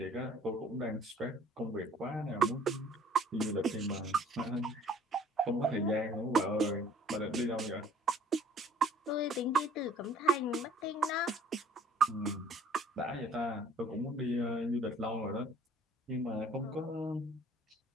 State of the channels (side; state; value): both; normal; correlation 0.54